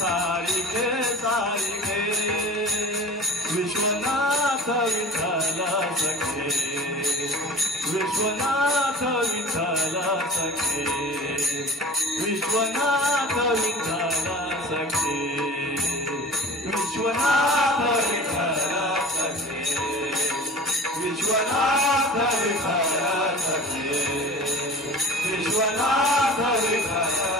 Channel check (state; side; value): normal; both; correlation 0.40